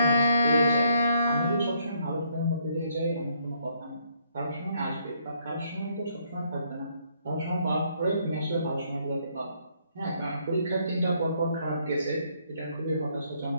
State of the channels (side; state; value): both; inverted; correlation -0.70